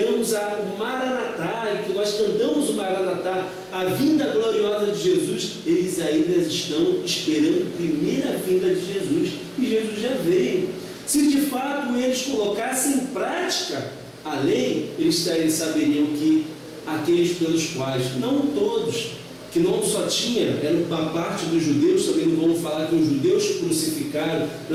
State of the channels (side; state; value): both; identical; correlation 1.00